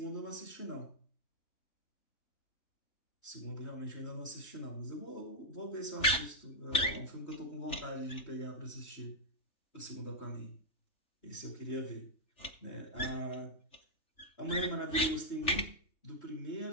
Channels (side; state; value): right; late; 3.4 ms